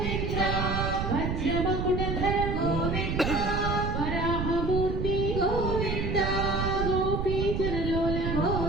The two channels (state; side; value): noise; right; rumble, 1 dB below the sound